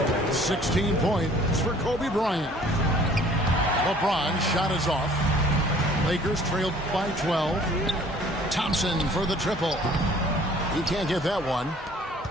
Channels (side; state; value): both; normal; correlation 0.53